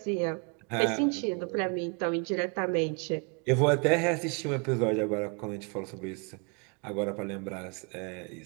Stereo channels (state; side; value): quieter; left; 34.8 dB